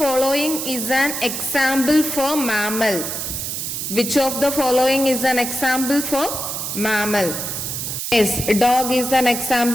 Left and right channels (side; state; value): right; noise; hiss, 4 dB below the sound